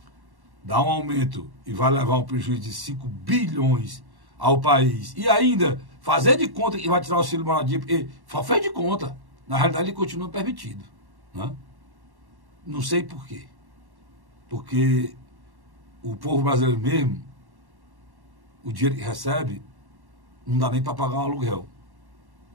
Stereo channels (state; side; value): late; left; 1.1 ms